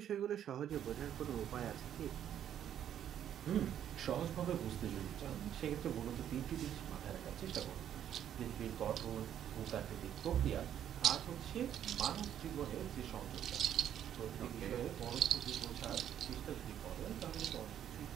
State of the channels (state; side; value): quieter; left; 10.1 dB